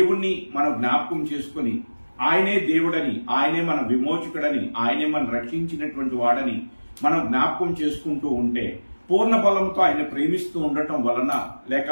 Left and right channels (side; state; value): both; inverted; correlation -1.00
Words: మనం జ్ఞాపకం చేసుకుని, ఆయనే దేవుడని, ఆయనే మన విమోచకుడని, ఆయనే మనం రక్షించినటువంటి వాడని మనం జ్ఞాపకం చేసుకుంటూ ఉంటే, పూర్ణ బలంతో ఆయన ప్రేమిస్తూ ఉండటం వలన,